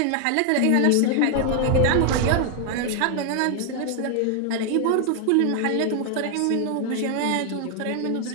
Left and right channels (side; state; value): both; different; correlation 0.00